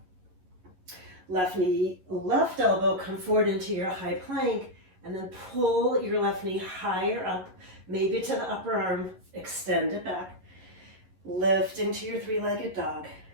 Left knee, left elbow, come forward into your high plank, and then pull your left knee higher up, maybe to the upper arm, extend it back. Lift into your three-legged dog.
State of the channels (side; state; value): left; late; 11 ms